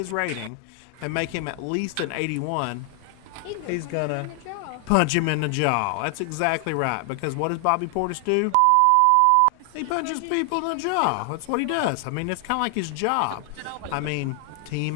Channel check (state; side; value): different; both; correlation 0.00